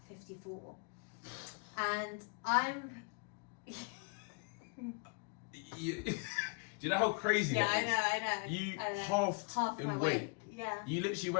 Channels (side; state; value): right; quieter; 34.5 dB